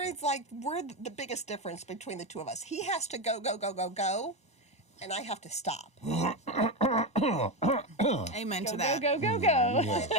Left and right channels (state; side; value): late; left; 1.0 ms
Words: it's like we're the biggest difference between the two of us. He has to go, and I have to stop. Amen to Go, that. go, go, go.